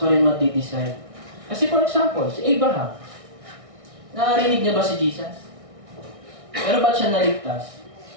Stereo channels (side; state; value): left; late; 1.6 ms